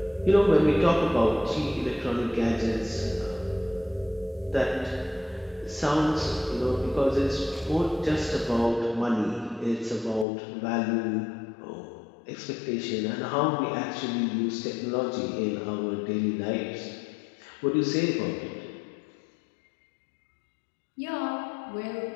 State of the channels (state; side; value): drops out; right; at 10.2 s